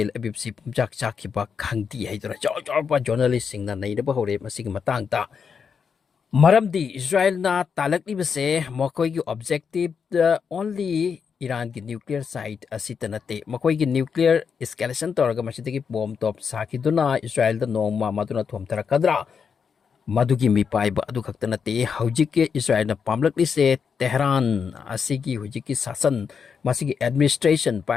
Aviv si pumjak chakiba khangti haidura chawba journalist sing na naidaba hore masigi matangta Maramdi Israel na talakli base makoy gi objective only Iran ki nuclear site asita nate makoy gi nuclear escalation toraga masitagi bomb top saki duna Israel da nongma maduna thomtara kadra madugi mi paiba adu khakta nate hojik ke Israel na pamlakli se Tehran asigi hojik ki sasan masigi administration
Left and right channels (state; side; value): quieter; right; 6.4 dB